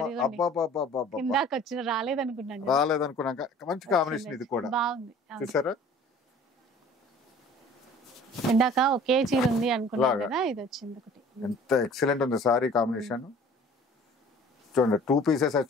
రాలేదనుకున్నాక మంచి కాంబినేషన్. ఇది కూడా చూసారా, ఇందాక ఒకే చీర ఉంది అనుకున్నాను కదా, ఇది వచ్చింది ఒకటి. ఎంత ఎక్సలెంట్ ఉంది సారీ కాంబినేషన్. చూడండి 2 పీసెస్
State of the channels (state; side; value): normal; both; correlation 0.49